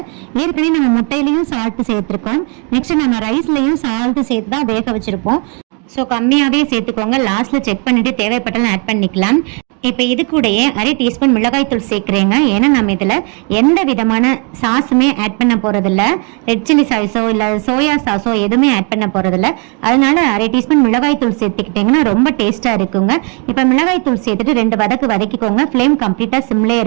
ஏற்கனவே நம்ம முட்டையிலையும் சால்ட் சேர்த்துருக்கோம். நெக்ஸ்ட் நம்ம ரைஸ்லையும் சால்ட் சேர்த்து தான் வேக வச்சிருப்போம். ஸோ கம்மியாகவே சேர்த்துக்கோங்க. லாஸ்ட்டில் செக் பண்ணிவிட்டு தேவைப்பட்டாலும் ஆட் பண்ணிக்கலாம். இப்போ இது கூடயே 1/2 டீஸ்பூன் மிளகாய் தூள் சேர்க்குறேங்க. ஏன்னா நம்ம இதில் எந்த விதமான சாஸுமே ஆட் பண்ண போகிறதில்ல. ரெட் சில்லி சாஸோ இல்லை சோயா சாஸோ எதுவுமே ஆட் பண்ண போகிறதில்ல. அதனால 1/2 டீஸ்பூன் மிளகாய் தூள் சேர்த்துக்கிட்டிங்கன்னா ரொம்ப டேஸ்ட்டாக இருக்குங்க. இப்போ மிளகாய் தூள் சேர்த்துட்டு 2 வதக்கிக்கோங்க. ஃப்ளேம் கம்ப்ளீட்டாக சிம்லேயே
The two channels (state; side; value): quieter; left; 35.4 dB